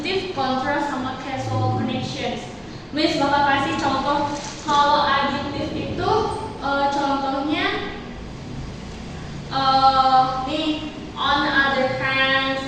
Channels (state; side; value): identical; both; correlation 1.00